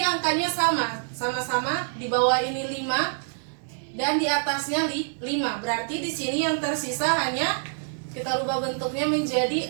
angkanya sama-sama di bawah ini 5 dan di atasnya 5. Berarti di sini yang tersisa hanya kita rubah bentuknya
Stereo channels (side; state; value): left; silent; digital silence